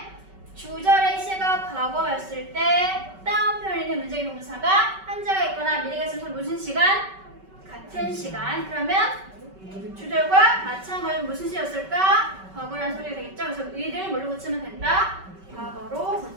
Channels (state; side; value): late; left; 5.2 ms